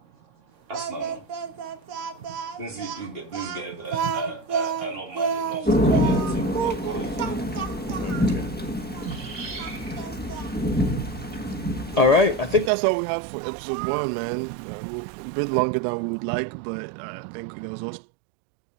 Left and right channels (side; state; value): left; drops out; at 12.7 s